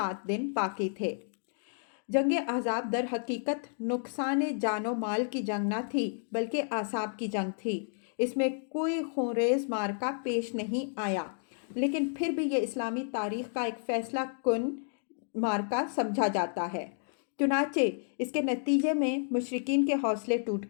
دن باقی تھے۔ جنگ احزاب در حقیقت نقصان جان و مال کی جنگ نہ تھی، بلکہ اعصاب کی جنگ تھی۔ اس میں کوئی خونریز مارکا پیش نہیں آیا، لیکن پھر بھی یہ اسلامی تاریخ کا ایک فیصلہ کن مارکا سمجھا جاتا ہے۔ چنانچہ اس کے نتیجے میں مشرکین کے حوصلے ٹوٹ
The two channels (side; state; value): right; silent; digital silence